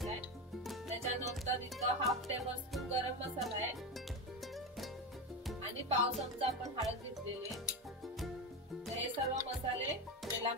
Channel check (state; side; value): normal; both; correlation 0.18